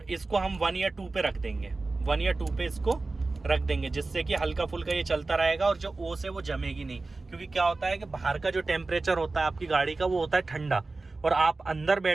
इसको हम 1 या 2 पे रख देंगे, 1 या 2 पे इसको रख देंगे, जिससे कि हल्का फुल्का ये चलता रहेगा और जो ओस है वो जमेगी नहीं। क्योंकि क्या होता है कि बाहर का जो टेम्परेचर होता है आपकी गाड़ी का वो होता है ठंडा, और आप अंदर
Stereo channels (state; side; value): quieter; left; 3.5 dB